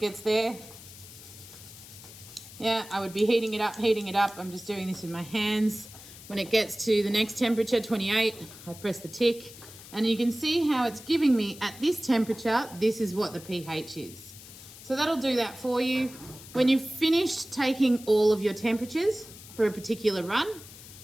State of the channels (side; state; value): left; noise; hiss, 17 dB below the sound